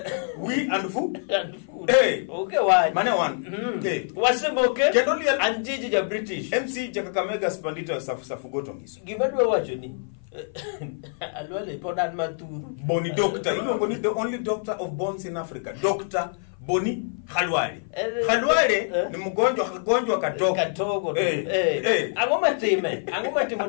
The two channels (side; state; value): right; silent; 55 dB below the other